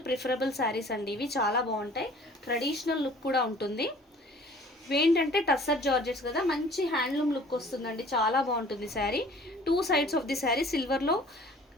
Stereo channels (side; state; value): both; normal; correlation 0.50